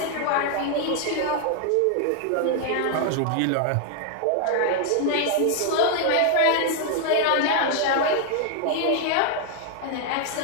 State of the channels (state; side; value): different; both; correlation 0.00